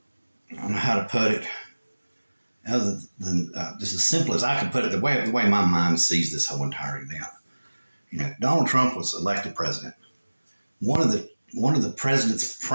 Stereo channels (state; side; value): inverted; both; correlation -1.00